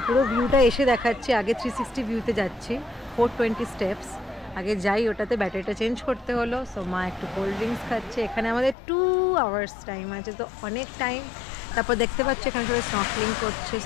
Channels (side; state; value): right; drops out; at 8.8 s